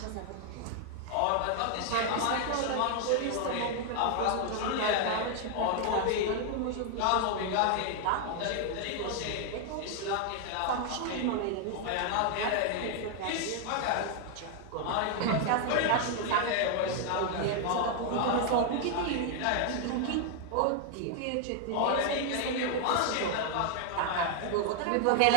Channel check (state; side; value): different; both; correlation 0.00